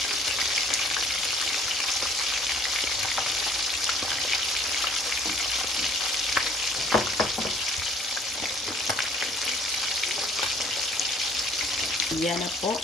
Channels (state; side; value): normal; both; correlation 0.56